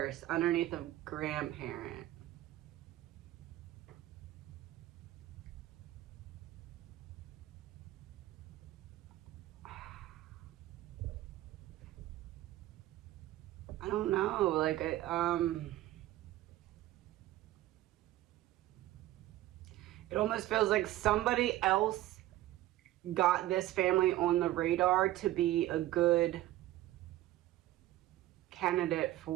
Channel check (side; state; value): left; quieter; 15.3 dB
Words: underneath of grandparent. I don't know, like it almost feels like somebody else got this family on the radar to be a good candidate